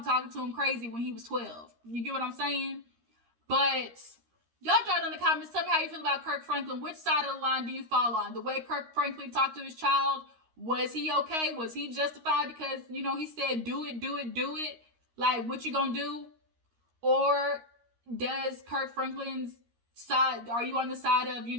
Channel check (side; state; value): left; late; 13 ms